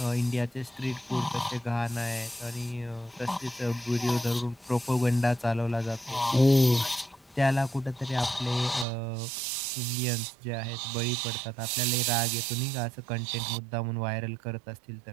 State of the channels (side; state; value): left; drops out; at 8.8 s